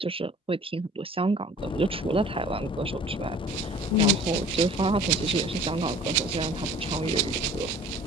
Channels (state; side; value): normal; both; correlation 0.48